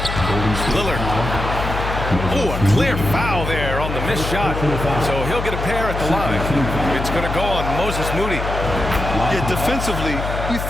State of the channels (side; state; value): left; noise; hum, 5 dB below the sound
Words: Lillard. Oh, a clear foul there on the missed shot. So he'll get a pair at the line. It's going to go on Moses Moody. Yeah, defensively, you